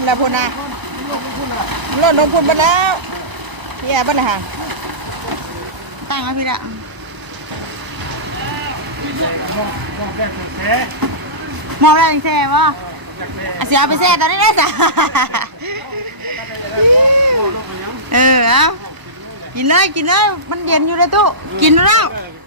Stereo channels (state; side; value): late; left; 1.0 ms